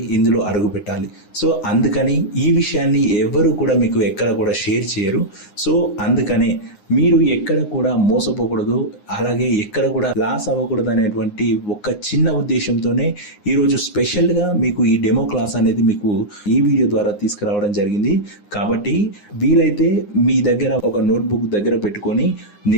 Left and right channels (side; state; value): right; late; 9.7 ms